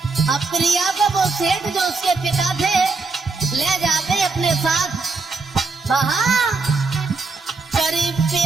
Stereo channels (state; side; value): quieter; left; 4.1 dB